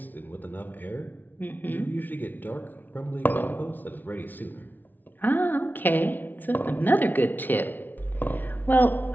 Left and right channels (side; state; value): right; late; 0.086 ms